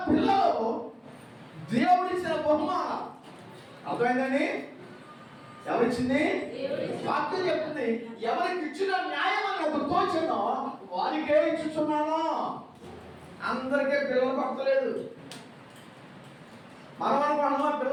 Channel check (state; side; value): identical; both; correlation 1.00